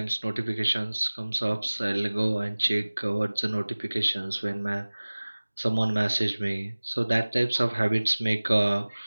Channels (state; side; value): inverted; both; correlation -1.00